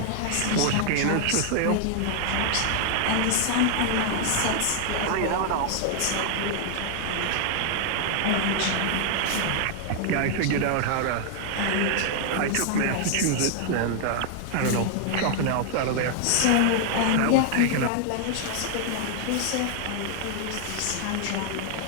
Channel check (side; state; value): both; different; correlation 0.00